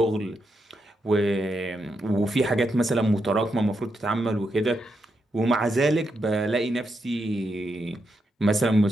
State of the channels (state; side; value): normal; both; correlation 0.83